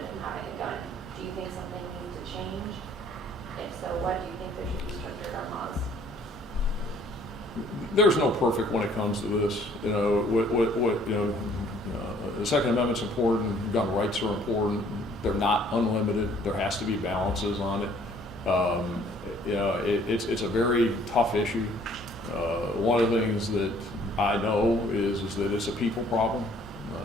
from having a gun. Do you think something needs to change? If so, what do you think there should be stricter gun laws? There's no perfect when it comes to this. You know, the Second Amendment's important, gun rights are important. They're not unlimited. There has to be balances on it. You know, it's a very tough issue. One of the things that I know is that it's a people problem,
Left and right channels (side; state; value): both; normal; correlation 0.59